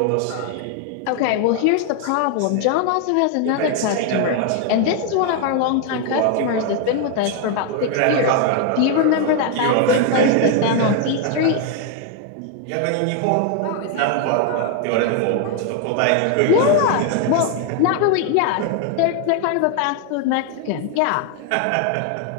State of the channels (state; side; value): different; both; correlation 0.01